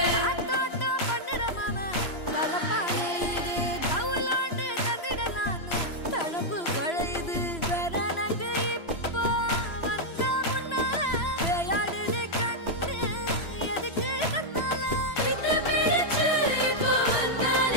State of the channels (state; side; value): late; right; 3.0 ms